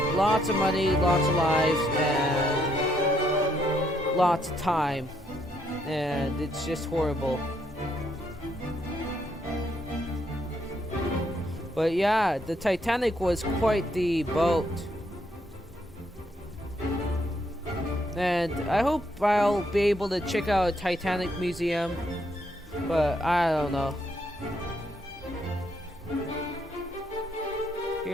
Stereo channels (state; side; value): normal; both; correlation 0.73